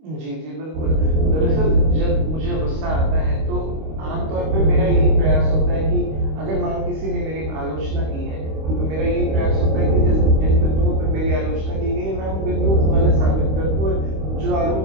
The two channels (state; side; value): late; left; 25 ms